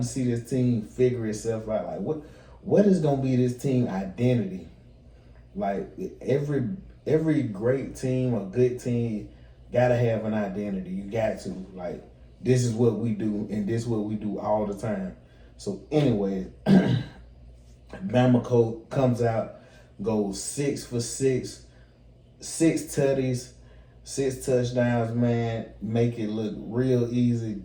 to see this team figure itself out. Like, what is going to be this team identity? Like, every great team or good team gotta have an identity. You got to. Like, this is what we do, and this is what we do all the time. So anyway, Bama comes out, goes 6 for 6, 6 tutties, 6 touchdowns, man. Make it look real easy.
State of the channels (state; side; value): identical; both; correlation 1.00